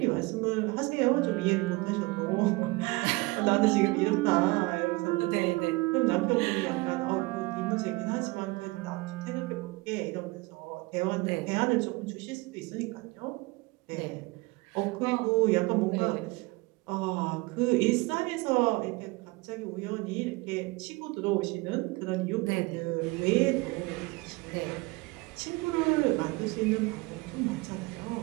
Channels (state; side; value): quieter; left; 23.5 dB